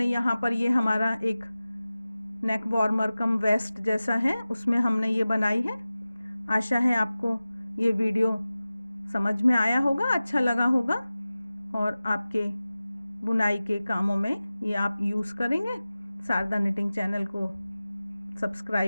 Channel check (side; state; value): both; inverted; correlation -0.96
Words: यहाँ पर ये हमारा एक नेक वार्मर कम वेस्ट जैसा है, उसमें हमने ये बनाई है। आशा है आपको ये वीडियो समझ में आया होगा, अच्छा लगा होगा और आपके बुनाई के कामों में ये आप यूज़ करेंगे। शारदा निटिंग चैनल को